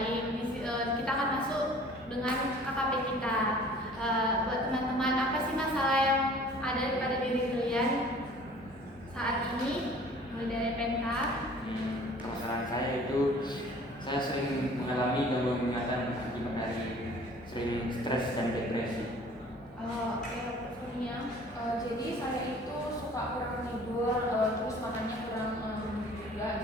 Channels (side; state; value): both; normal; correlation 0.50